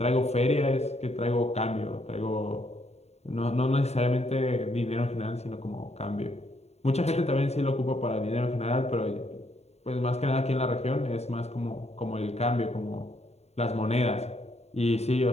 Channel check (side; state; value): right; late; 0.31 ms